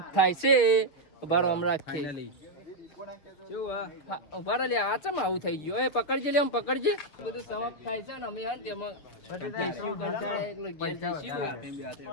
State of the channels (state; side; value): late; right; 7.0 ms